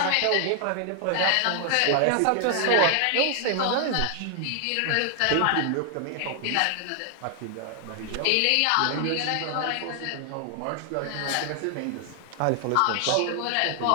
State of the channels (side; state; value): both; different; correlation 0.00